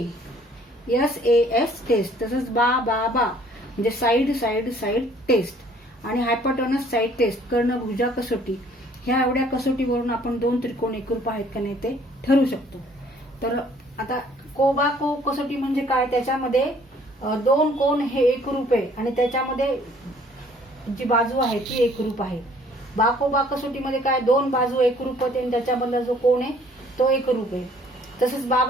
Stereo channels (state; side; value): normal; both; correlation 0.58